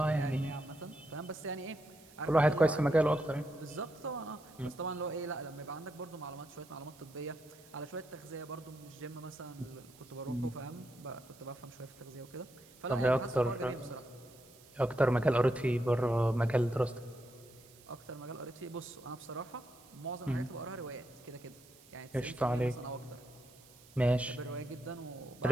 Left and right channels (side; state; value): right; noise; hiss, 24 dB below the sound